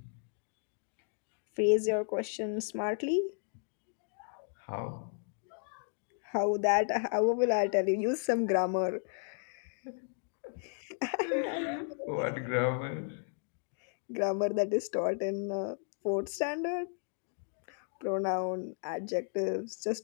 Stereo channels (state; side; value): silent; right; 55 dB below the other